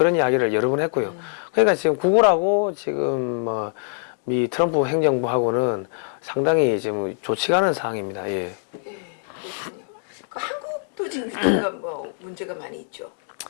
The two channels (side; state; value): right; silent; digital silence